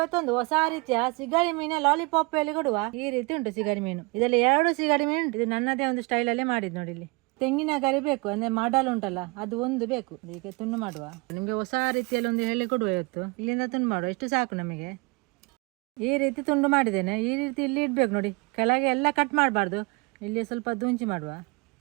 ಹೊಸ ರೀತಿಯ ಸಿಗಡಿ ಮೀನ ಲಾಲಿಪಾಪ್ ಅಲ್ಲಿ ಕೊಡುವ ಈ ರೀತಿ ಉಂಟು ಸಿಗಡಿ ಮೀನು. ಇದರಲ್ಲಿ 2 ಸಿಗಡಿ ಮೀನು ಉಂಟು. ಇದು ನನ್ನದೇ ಒಂದು ಸ್ಟೈಲ್ ಅಲ್ಲೇ ಮಾಡಿದ್ ನೋಡಿ. ಇಲ್ಲಿ ತೆಂಗಿನ ಗರಿ ಬೇಕು, ಅಂದ್ರೆ ಮಾಡಲ್ ಉಂಟಲ್ಲ ಅದು ಒಂದು ಬೇಕು. ಈಗ ತುಂಡು ಮಾಡುವ, ನಿಮ್ಗೆ ಹೊಸ ರೀತಿಯಲ್ಲಿ ಒಂದು ಹೇಳಿ ಕೊಡುವ. ಇವತ್ತು ಇಲ್ಲಿಂದ ತುಂಡು ಮಾಡುವ, ಎಷ್ಟು ಸಾಕು ನಮಗೆ. ಈ ರೀತಿ ತುಂಡು ಮಾಡಿದ್ದೇನೆ. ಈ ರೀತಿ ಇಲ್ಲಿ ಇಡ್ಬೇಕು ನೋಡಿ, ಕೆಳಗೆ ಎಲ್ಲ ಕಟ್ ಮಾಡಬಾರ್ದು. ಇಲ್ಲಿ ಸ್ವಲ್ಪ ದುಂಚಿ ಮಾಡುವ,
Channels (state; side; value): quieter; left; 27.8 dB